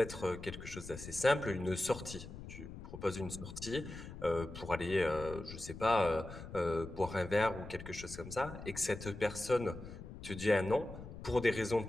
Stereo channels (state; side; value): noise; left; rumble, 12 dB below the sound